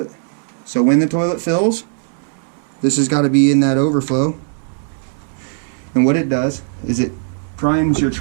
it. So when the toilet fills, this has got to be in that overflow. And what it does is it primes your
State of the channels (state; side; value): silent; left; 62 dB below the other